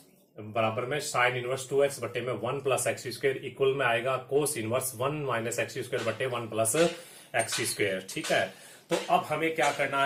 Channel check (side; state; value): both; identical; correlation 1.00